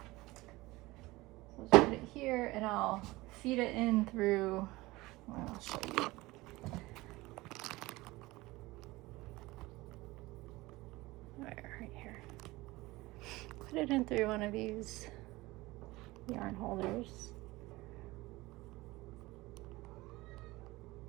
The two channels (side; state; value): left; quieter; 20.3 dB